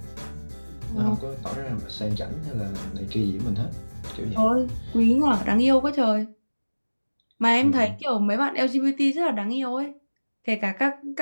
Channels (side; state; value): both; inverted; correlation -1.00